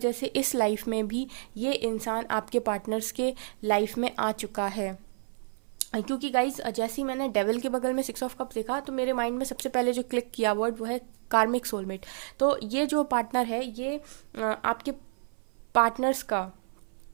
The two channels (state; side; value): silent; left; 55 dB below the other